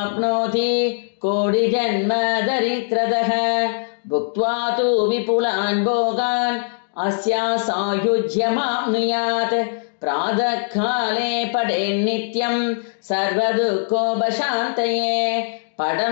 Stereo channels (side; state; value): right; silent; digital silence